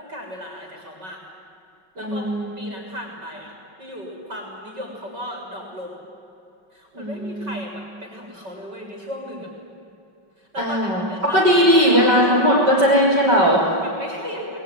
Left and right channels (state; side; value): late; left; 5.3 ms